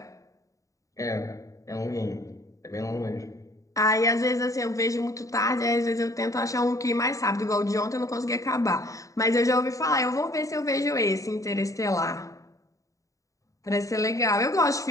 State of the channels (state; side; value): late; right; 0.16 ms